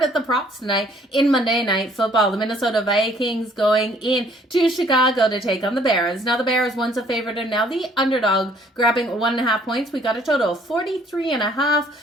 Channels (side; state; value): both; normal; correlation 0.61